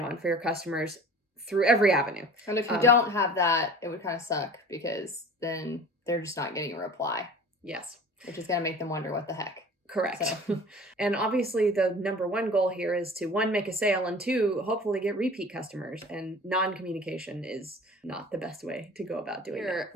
for your customers through every avenue. And if you don't have that, it would kind of suck because then they're just not getting a reply. Yes. Which is going to make them wonder what the heck. Correct. So. And obviously the number one goal here is to, one, make a sale, and two, hopefully get repeat customers. And non-communication is not the best way to go about doing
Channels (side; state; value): both; normal; correlation 0.41